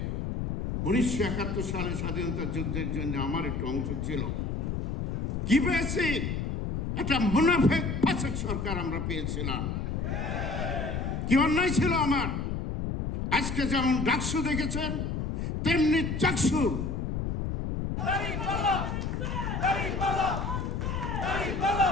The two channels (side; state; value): left; noise; rumble, 2 dB below the sound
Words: 1971 সালে স্বাধীনতা যুদ্ধের জন্য আমার একটু অংশ ছিল। কি পেয়েছি? একটা মুনাফিক ফাসিক সরকার আমরা পেয়েছিলাম। কি অন্যায় ছিল আমার। আজকে যেমন ডাকসু দেখেছেন তেমনি চাকসু।